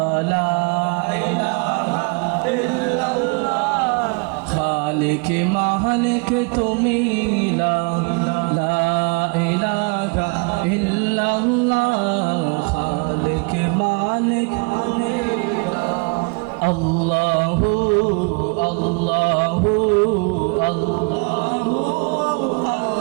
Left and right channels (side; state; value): left; quieter; 32.6 dB